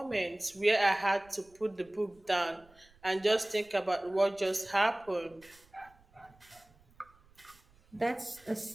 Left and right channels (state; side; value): noise; right; rumble, 29 dB below the sound